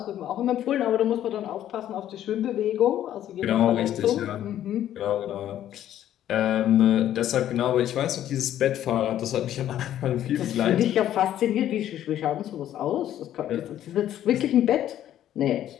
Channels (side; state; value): right; quieter; 11.7 dB